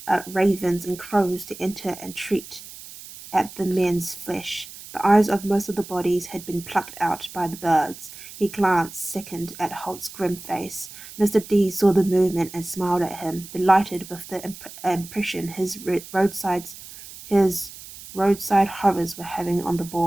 ravens and crows to enter and treat at the men's flesh. The eyes of most of the bodies had been plucked out by the birds. He glanced, sickened, at Holt's grim face. Mr. D saw the movement and smiled at him, delighted with the impression his roadside horrors were having on the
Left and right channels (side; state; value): right; noise; hiss, 15 dB below the sound